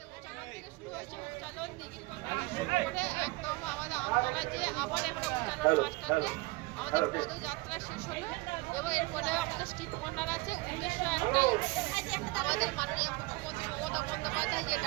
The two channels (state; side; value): quieter; left; 22.9 dB